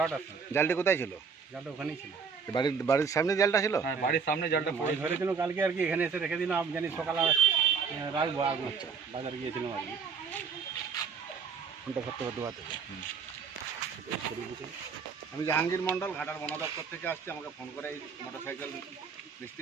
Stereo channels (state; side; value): quieter; left; 5.8 dB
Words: সময়। জালটি কোথায় ছিল? জালটা ওখানেই ছিল। বাড়ির সামনে জালটা ছিল? হ্যাঁ, বাড়ির সামনে জালটা পড়ে ধরেছিল কালকে আর কি, এখানে এসে রেখে দিলাম। আমি জানি সকালে রাখবো। আচ্ছা, বাজারে গিয়েছিলাম আর কি। ফোনটা করতে করতে আমি জাহাঙ্গীর মণ্ডল, ঘাটাল বন দপ্তর থেকে আসছি। আমাকে ফোন করে এই মোটরসাইকেল